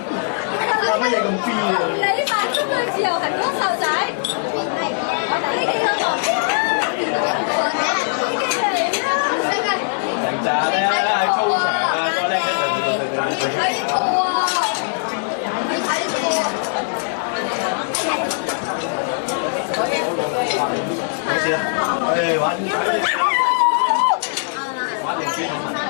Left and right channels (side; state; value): right; silent; 66 dB below the other